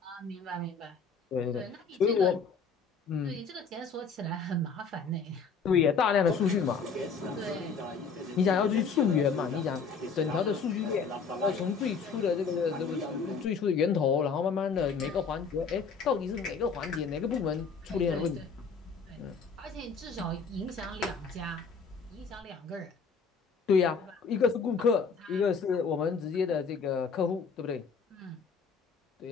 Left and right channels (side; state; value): right; quieter; 5.3 dB